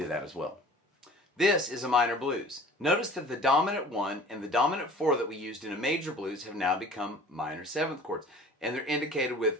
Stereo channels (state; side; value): normal; both; correlation 0.45